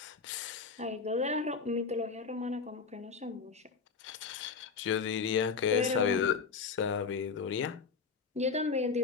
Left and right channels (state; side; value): quieter; right; 5.3 dB